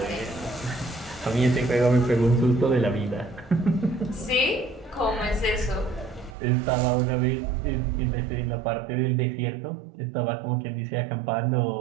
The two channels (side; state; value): left; drops out; at 6.3 s